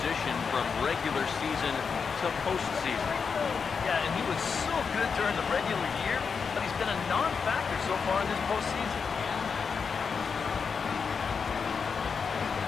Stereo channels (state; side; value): quieter; right; 5.7 dB